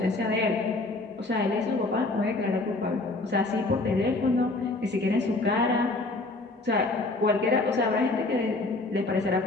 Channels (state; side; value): quieter; right; 3.0 dB